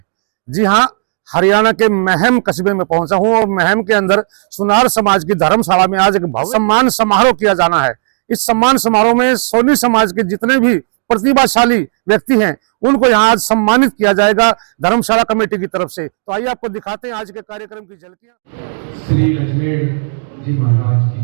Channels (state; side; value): silent; left; digital silence